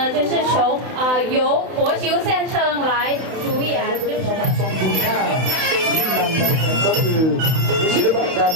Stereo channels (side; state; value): left; late; 31 ms